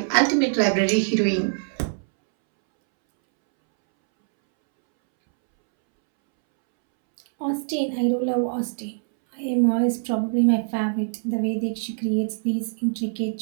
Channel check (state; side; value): silent; left; 63 dB below the other